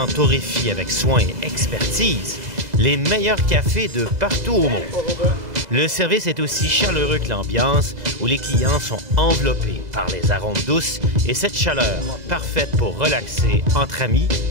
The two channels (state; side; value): late; left; 2.0 ms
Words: torréfient avec soin et expertise les meilleurs cafés de partout au monde. Le service est aussi chaleureux que l'ambiance, où les clients sont enveloppés par les arômes douces et cette chaleur parfaite pour relaxer entre amis